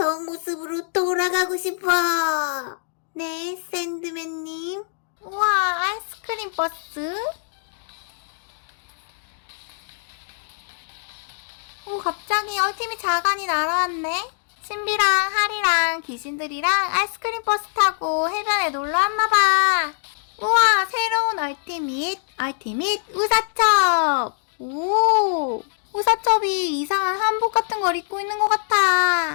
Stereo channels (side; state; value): right; silent; digital silence